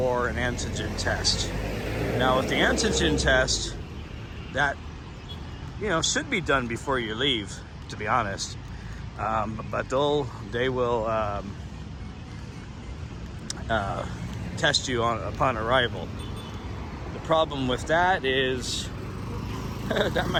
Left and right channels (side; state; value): both; identical; correlation 1.00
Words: an antigen test. Now with the antigen test, that should be done before you leave, to be honest. But they will test you upon arrival. The problem with that is that